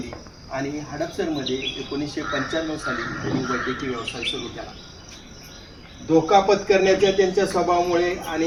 आणि हडपसरमध्ये 1995 साली त्यांनी वैद्यकीय व्यवसाय सुरू केला. धोका पत्करण्याच्या त्यांच्या स्वभावामुळे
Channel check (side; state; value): both; identical; correlation 1.00